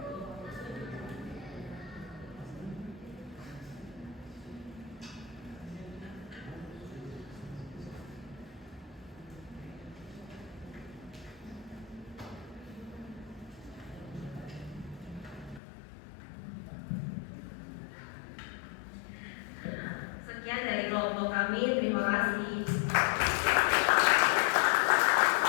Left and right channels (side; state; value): right; drops out; at 15.6 s